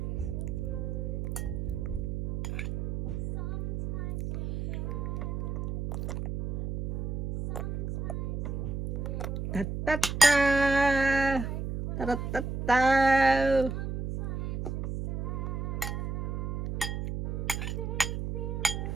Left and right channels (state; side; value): noise; right; hum, 3 dB below the sound